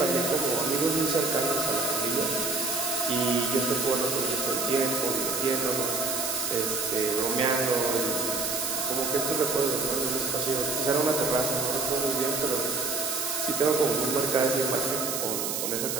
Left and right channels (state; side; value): noise; right; hiss, 2 dB below the sound